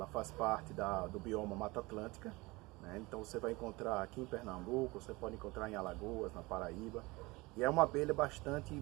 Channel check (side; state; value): left; quieter; 23.0 dB